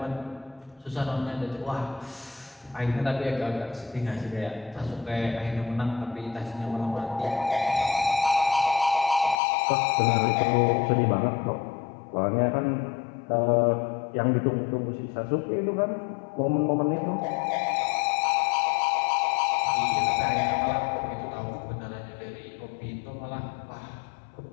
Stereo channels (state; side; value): drops out; right; at 9.3 s